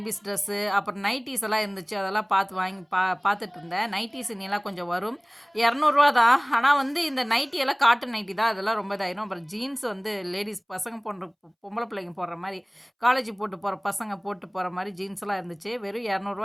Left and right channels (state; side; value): identical; both; correlation 1.00